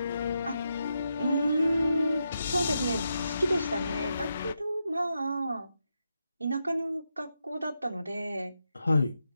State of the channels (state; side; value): inverted; both; correlation -0.85